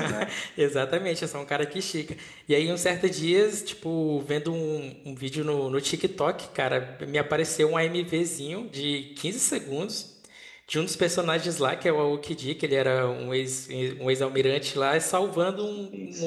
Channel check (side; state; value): both; identical; correlation 1.00